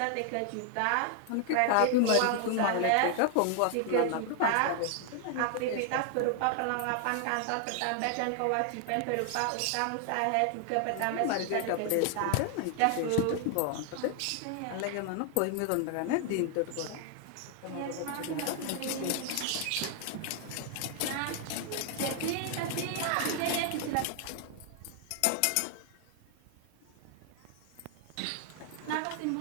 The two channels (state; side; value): different; both; correlation 0.00